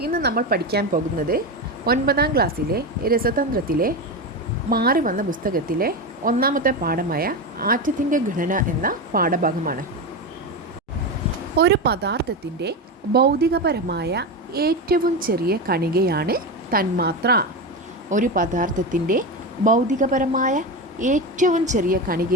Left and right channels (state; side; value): normal; both; correlation 0.17